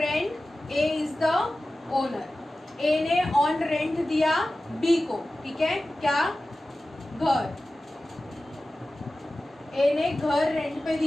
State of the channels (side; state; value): both; normal; correlation 0.95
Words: A is the owner, A ने ऑन रेंट दिया बी को, ठीक है, क्या, घर, ए ने घर रेंट पे